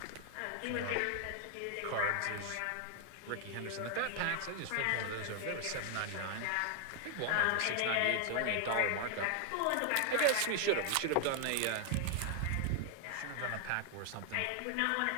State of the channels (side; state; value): both; different; correlation 0.00